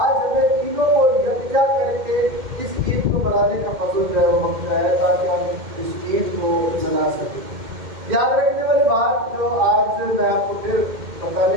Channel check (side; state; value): left; late; 2.1 ms